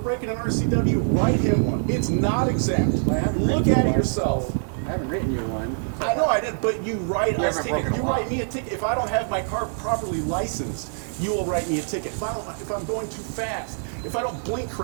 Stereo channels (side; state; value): left; silent; 55 dB below the other